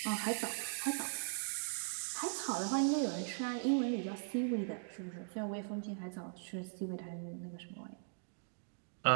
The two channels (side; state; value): left; silent; digital silence